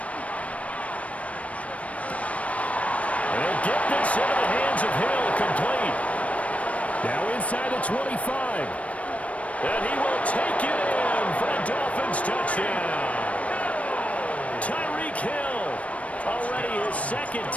They'll get this into the hands of Hill. Complete. Now inside the 25. And he will take it in for a Dolphins touchdown. Tyreek Hill. Already his 2nd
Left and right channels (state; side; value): late; right; 0.065 ms